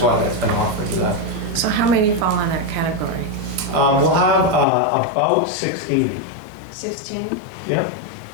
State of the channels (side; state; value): right; drops out; at 4.7 s